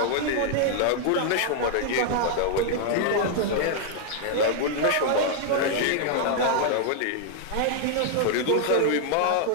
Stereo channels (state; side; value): different; both; correlation 0.00